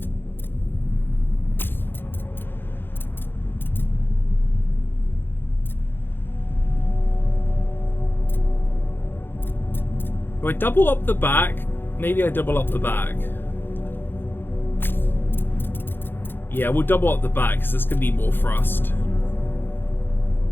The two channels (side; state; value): right; late; 0.10 ms